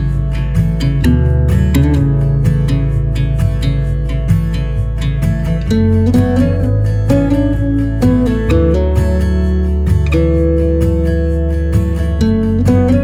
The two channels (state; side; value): identical; both; correlation 1.00